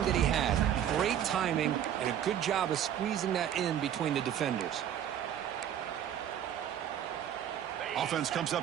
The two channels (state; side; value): quieter; left; 10.0 dB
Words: that he had. Great timing and a good job of squeezing that in between the defenders. Offense comes